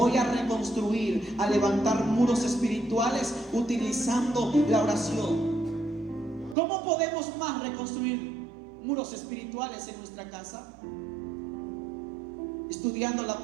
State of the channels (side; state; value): left; drops out; at 6.6 s